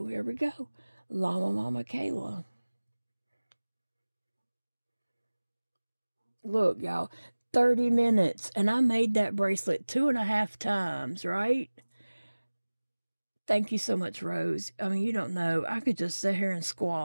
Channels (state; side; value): inverted; both; correlation -1.00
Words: here we go. Llama, Mama, Kayla. Look, y'all. 30 minutes. And I made that bracelet 2.5 times, right? Thank you so much, Rose. I mean, you don't know. I could just sit here and